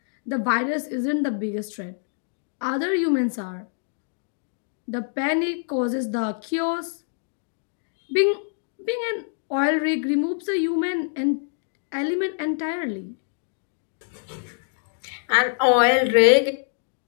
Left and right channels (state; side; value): silent; right; digital silence